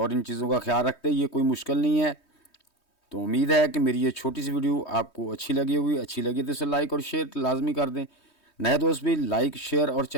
इन चीज़ों का ख्याल रखते हैं। ये कोई मुश्किल नहीं है। तो उम्मीद है कि मेरी ये छोटी सी वीडियो आपको अच्छी लगी होगी। अच्छी लगी तो इसे लाइक और शेयर लाजमी कर दें। नए दोस्त भी लाइक, शेयर और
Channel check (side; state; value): right; late; 3.2 ms